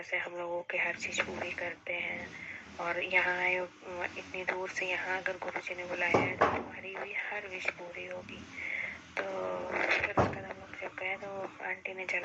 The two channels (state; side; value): identical; both; correlation 1.00